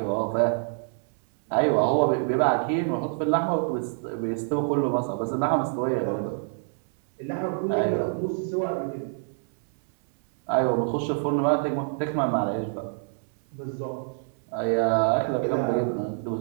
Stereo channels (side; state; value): left; silent; 61 dB below the other